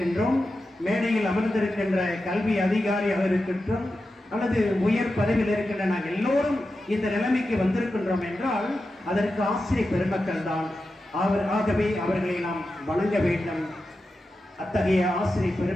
மேடையில் அமர்ந்திருக்கின்ற கல்வி அதிகாரியாக இருக்கின்றோம், அல்லது உயர் பதவியில் இருக்கின்ற நாங்கள் எல்லோரும் இந்த நிலைமைக்கு வந்திருக்கின்றோம் என்றால் அதற்கு ஆசிரியர் பெருமக்கள் தான். ஆகவே அவர்களை நாம் வணங்க வேண்டும். அத்தகைய ஆசிரியர்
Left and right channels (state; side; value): normal; both; correlation 0.91